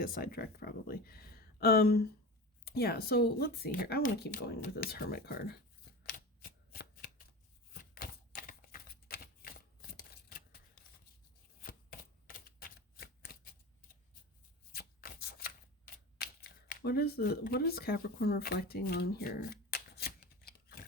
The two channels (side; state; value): both; normal; correlation 0.30